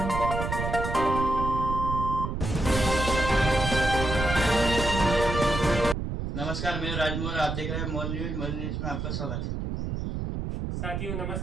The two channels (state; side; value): noise; right; rumble, 3 dB below the sound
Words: नमस्कार, मैं राजमोहन, आप देख रहे हैं मोर न्यूज में आपका स्वागत है। साथियों